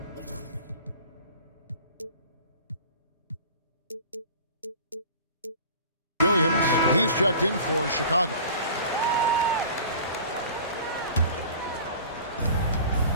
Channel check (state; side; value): inverted; both; correlation -0.42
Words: Williams, he's checked in for Chicago.